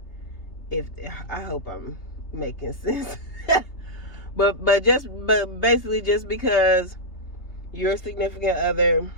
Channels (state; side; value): late; right; 3.2 ms